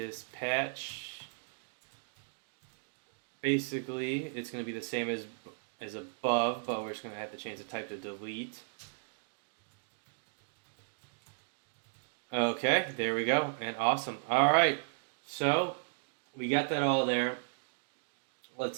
Basically, it's going to be the same as above, but we're just going to have to change the type to delete. Okay, there we go, and awesome. All right, so we got that all there.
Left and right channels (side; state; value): left; silent; digital silence